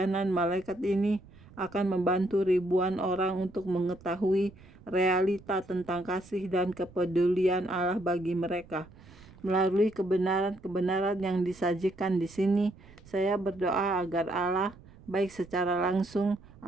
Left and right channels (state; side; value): noise; right; rumble, 22 dB below the sound